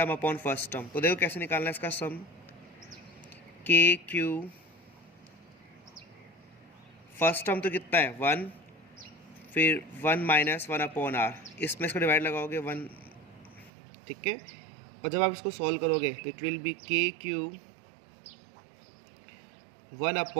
upon first term. तो देखो कैसे निकालना है इसका सम. KQ फर्स्ट टर्म तो कितना है 1, फिर 1 माइनस 1 अपॉन आर, इसमें इसको डिवाइड लगाओगे 1, ठीक है. और जब आप इसको सॉल्व करोगे तो it will be KQ 1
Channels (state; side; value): drops out; left; at 13.7 s